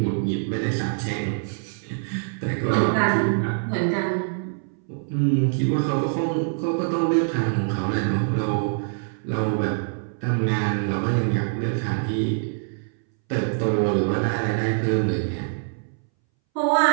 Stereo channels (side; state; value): left; silent; 62 dB below the other